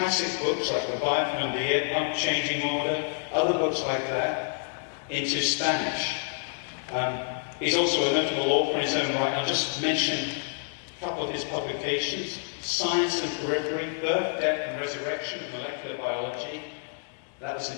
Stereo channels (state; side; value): silent; right; 59 dB below the other